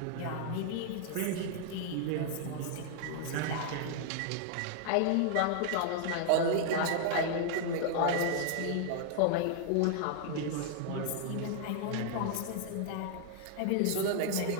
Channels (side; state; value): both; different; correlation 0.00